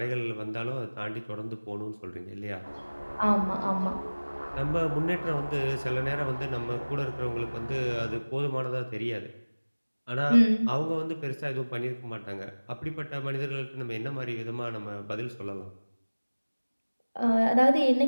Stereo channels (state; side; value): inverted; both; correlation -1.00